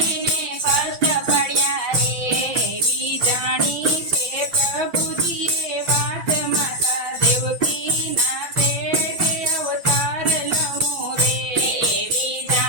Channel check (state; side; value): late; left; 5.9 ms